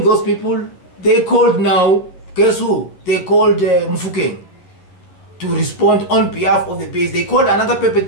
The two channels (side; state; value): right; late; 11 ms